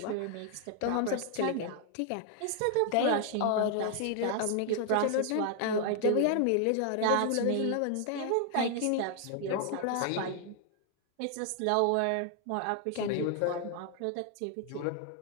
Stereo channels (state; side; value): different; both; correlation 0.00